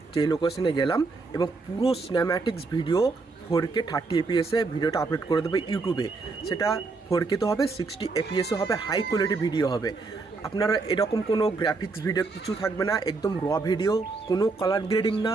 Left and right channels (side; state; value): left; quieter; 3.9 dB